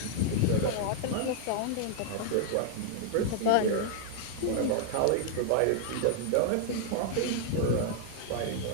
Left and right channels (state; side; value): different; both; correlation 0.00